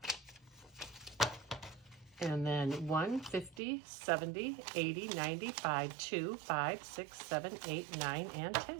And then 1, 50, 70, 80, 95, 2, 5, 6, 7, 8, 9, and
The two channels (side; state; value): left; drops out; at 3.6 s